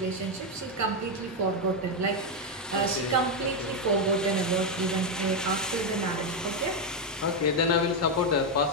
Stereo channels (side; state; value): both; normal; correlation 0.05